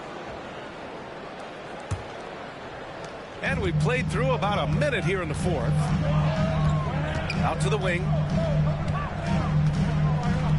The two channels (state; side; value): identical; both; correlation 1.00